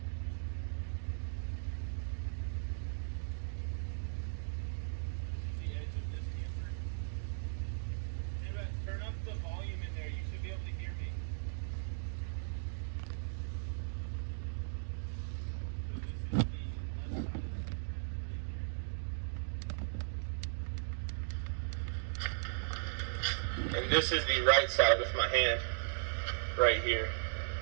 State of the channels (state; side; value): silent; left; digital silence